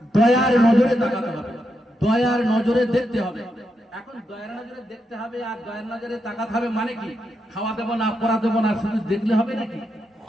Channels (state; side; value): normal; both; correlation 0.83